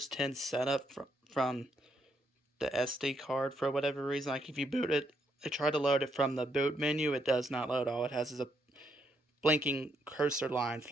10 setup from the SD card for whatever reason. Like if you boot it, I try to load it from the boot menu, it does not load. All it has is a blinking cursor line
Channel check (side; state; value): both; normal; correlation 0.76